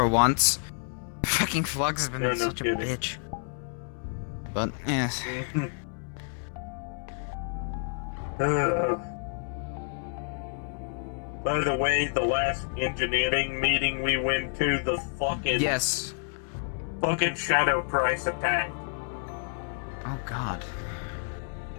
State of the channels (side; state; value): right; silent; 56 dB below the other